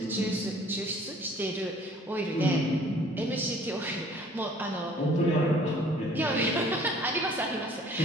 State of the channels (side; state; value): both; normal; correlation 0.54